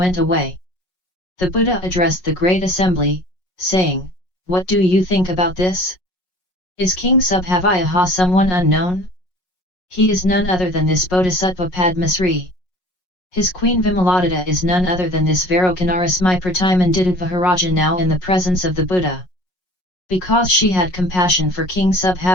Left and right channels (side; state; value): right; late; 5.5 ms